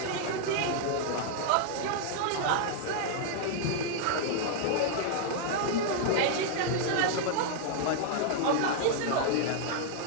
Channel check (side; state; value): both; different; correlation -0.01